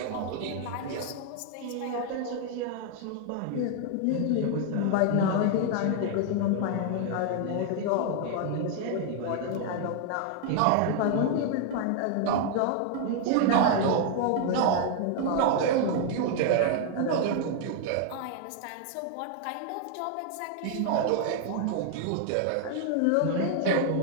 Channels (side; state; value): both; different; correlation 0.00